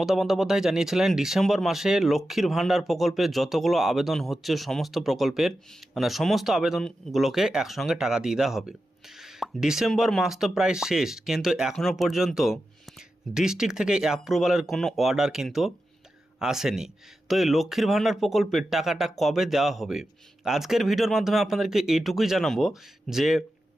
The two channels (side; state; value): both; normal; correlation 0.91